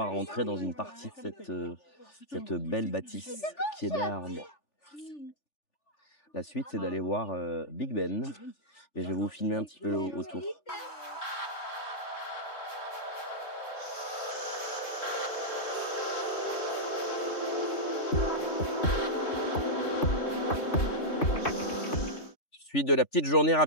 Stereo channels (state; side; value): late; right; 3.4 ms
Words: rentrer dans une partie de cette belle bâtisse qui est derrière moi. La suite, c'est d'aller voir Big Ben et je vais vous filmer un petit peu autour. Suite de la petite journée